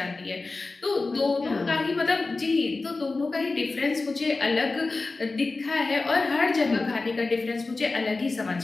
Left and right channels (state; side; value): quieter; right; 3.6 dB